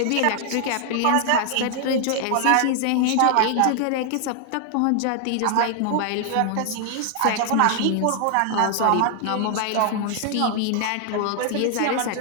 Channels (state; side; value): different; both; correlation 0.00